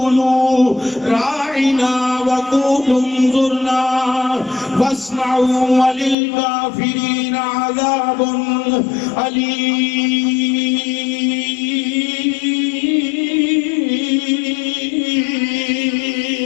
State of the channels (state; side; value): drops out; right; at 6.2 s